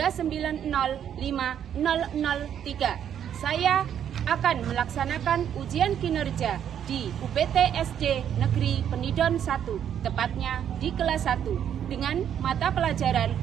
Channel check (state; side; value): quieter; left; 9.3 dB